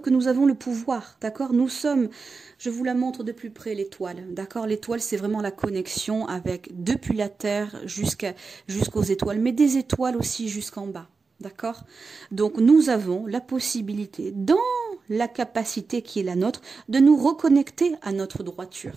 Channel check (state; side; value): quieter; left; 4.5 dB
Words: nous avons le pouvoir, d'accord? Nous sommes, je vous la montre de plus près, l'étoile, d'accord? L'étoile, c'est vraiment la connexion avec, depuis la Terre jusqu'aux étoiles, mais des étoiles aussi jusqu'en bas. D'accord? Donc nous avons la possibilité, dans la capacité qui est la nôtre, de nous reconnecter à notre droiture.